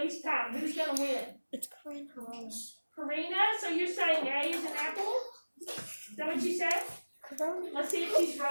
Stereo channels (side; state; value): both; inverted; correlation -1.00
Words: time? Who's gonna win? It's Karina. Karina, so you're saying A is an apple? Is that what you said? Let's see if she's